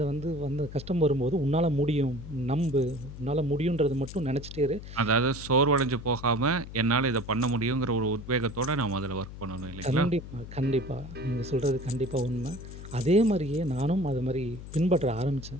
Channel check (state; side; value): noise; left; hum, 12 dB below the sound